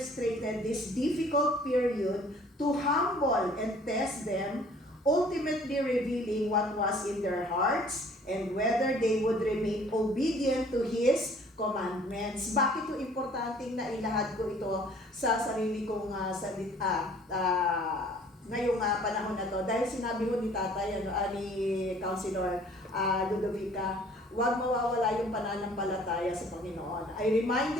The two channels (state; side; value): normal; both; correlation 0.54